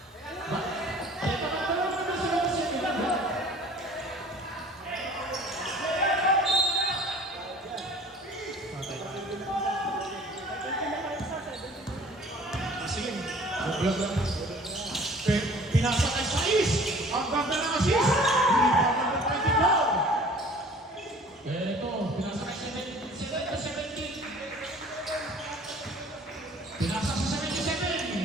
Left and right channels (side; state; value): both; normal; correlation 0.49